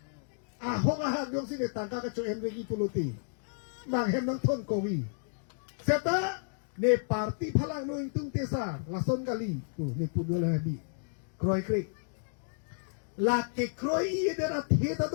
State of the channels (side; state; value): right; silent; digital silence